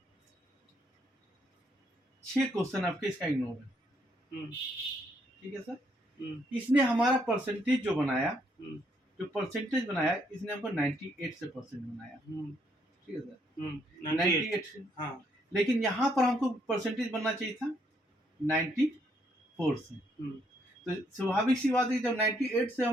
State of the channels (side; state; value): both; normal; correlation 0.72